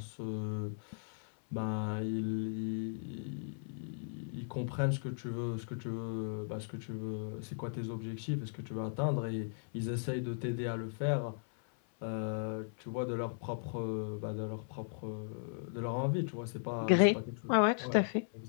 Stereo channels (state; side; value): silent; right; 53 dB below the other